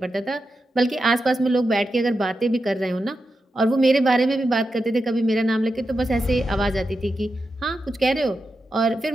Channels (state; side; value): normal; both; correlation 0.89